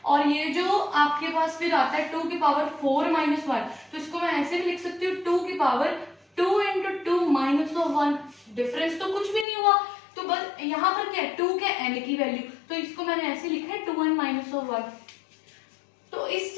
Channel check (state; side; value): drops out; right; at 9.5 s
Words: और ये जो आपके पास फिर आता है 2 की पावर 4-1, तो इसको मैं ऐसे भी लिख सकती हूँ 2 की पावर 2 × 2 -1। डिफरेंस तो कुछ भी नहीं हुआ, तो बस यहाँ पर क्या है, 2 के n की वैल्यू, तो इसको मैंने ऐसे लिखा है 2n-1। तो इस